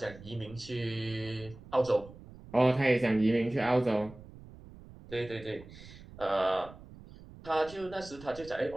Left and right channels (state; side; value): noise; right; rumble, 18 dB below the sound